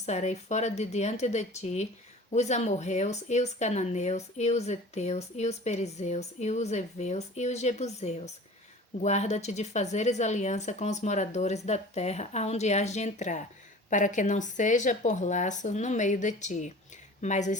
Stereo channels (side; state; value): both; normal; correlation 0.42